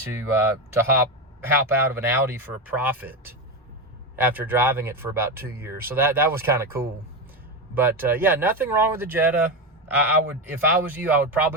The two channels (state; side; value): normal; both; correlation 0.15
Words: hop out of an Audi for a profit after driving it for about 2 years. So that was kind of cool. But yeah, nothing wrong with the Jetta. I would, if I was you, I would